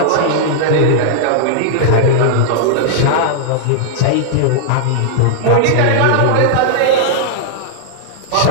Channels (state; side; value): different; both; correlation -0.01